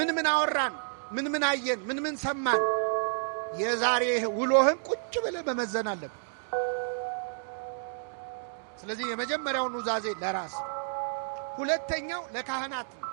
ምን አወራን? ምን ምን አየን? ምን ምን ሰማን? የዛሬ ውሎህን ቁጭ ብለህ መመዘን አለብህ። ስለዚህ የመጀመሪያው ኑዛዜ ለራስ፣ ሁለተኛው ለካህናት ነው።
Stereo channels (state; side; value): silent; left; digital silence